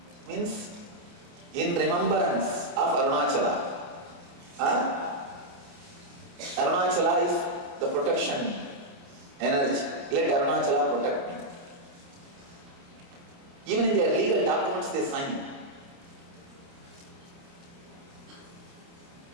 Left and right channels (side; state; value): left; late; 29 ms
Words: Means in remembrance of Arunachala. Arunachala is the protection energy. Let Arunachala protect me. Even in their legal documents, they sign.